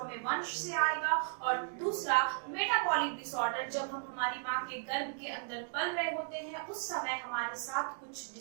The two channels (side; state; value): left; silent; 54 dB below the other